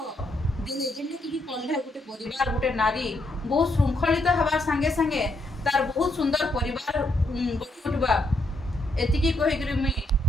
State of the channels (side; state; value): both; normal; correlation 0.77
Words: दिले जेंटा कि पढ़ले गोटे परिवार गोटे नारी बहुत श्रृंखलित हवा संगे संगे तार बहुत सुंदर परिवार गढ़ी उठवा एतिकी कहि करी मुई